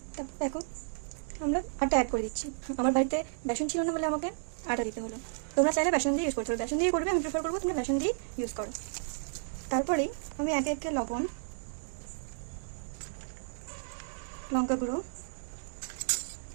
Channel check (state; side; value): silent; left; digital silence